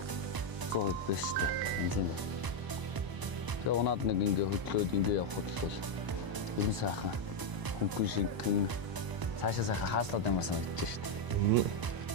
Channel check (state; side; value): late; left; 1.0 ms